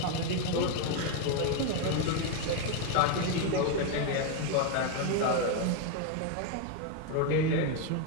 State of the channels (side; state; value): both; different; correlation 0.01